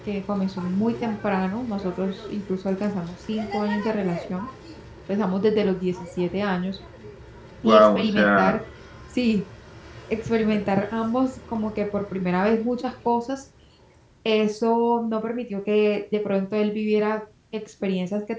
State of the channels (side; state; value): both; identical; correlation 1.00